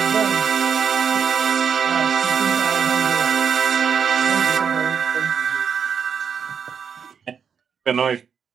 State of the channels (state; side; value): quieter; left; 7.0 dB